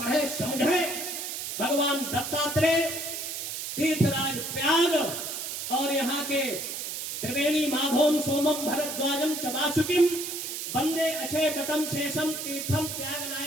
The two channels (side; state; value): right; noise; hiss, 5 dB below the sound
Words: समझे। भगवान दत्तात्रेय, तीर्थराज प्याग और यहाँ के त्रिवेणी माधवम सोमम भरद्वाजम चबासुकिम वंदे अक्षय तटम शेषम तीर्थम त्याग